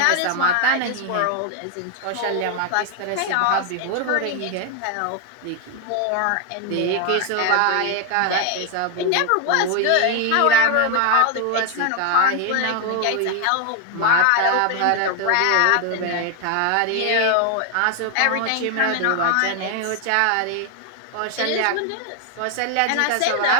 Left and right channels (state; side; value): different; both; correlation 0.01